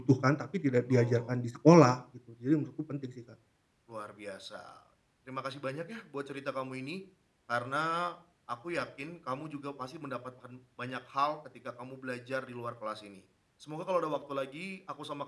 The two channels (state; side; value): identical; both; correlation 1.00